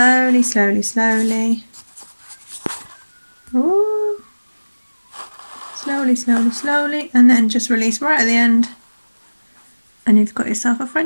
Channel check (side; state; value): both; inverted; correlation -1.00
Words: slowly, slowly. Ooh. Slowly, slowly, slowly, and then just release right at the end, and you've got yourself a